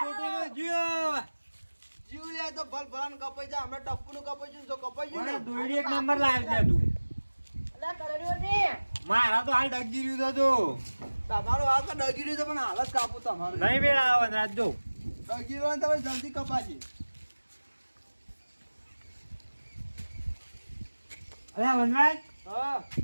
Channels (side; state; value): both; inverted; correlation -1.00